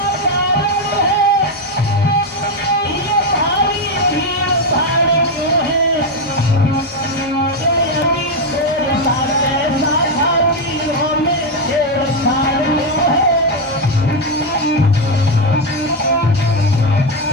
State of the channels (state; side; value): normal; both; correlation 0.06